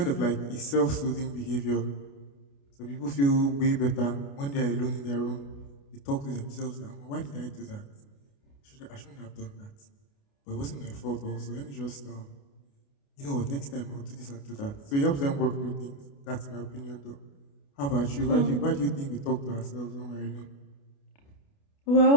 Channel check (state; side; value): late; right; 28 ms